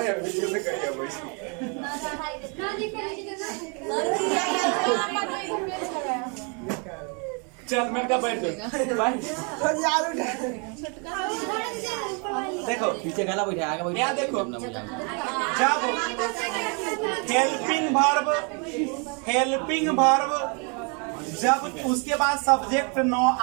वीडियो में करिए चल मैं का बैठ देखो पीछे गला बैठा आगे बैठा। यहाँ देखो, जब हेल्पिंग वर्ब जब उसके बाद सब्जेक्ट न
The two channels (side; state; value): left; quieter; 35.6 dB